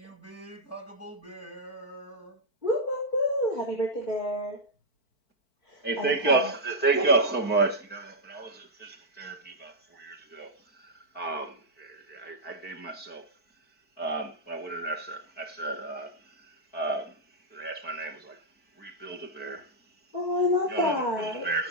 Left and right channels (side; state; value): right; late; 4.5 ms